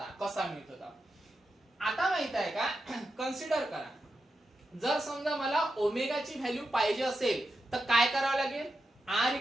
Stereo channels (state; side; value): normal; both; correlation 0.89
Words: कसा मिळतो तो. आता माहित आहे का, कन्सिडर करा, जर समजा मला ओमेगाची व्हॅल्यू पाहिजे असेल तर काय करावं लागेल, आर